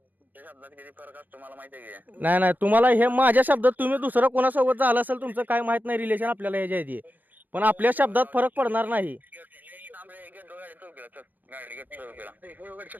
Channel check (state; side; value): late; left; 0.084 ms